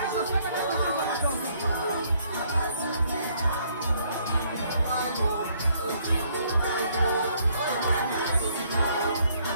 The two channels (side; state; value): both; inverted; correlation -0.66